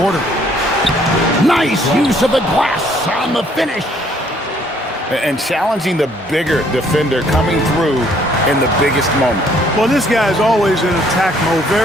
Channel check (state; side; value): normal; both; correlation 0.64